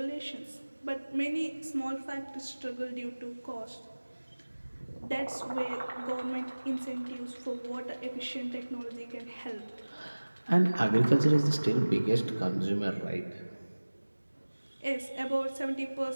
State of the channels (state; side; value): inverted; both; correlation -1.00